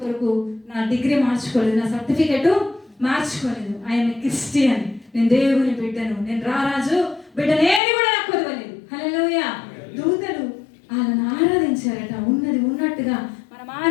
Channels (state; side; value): drops out; right; at 7.8 s